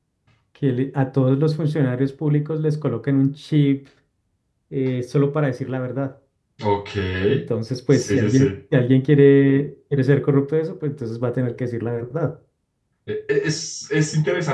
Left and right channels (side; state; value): both; identical; correlation 1.00